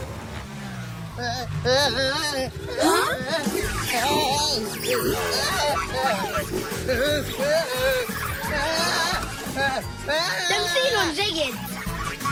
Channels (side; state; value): both; identical; correlation 1.00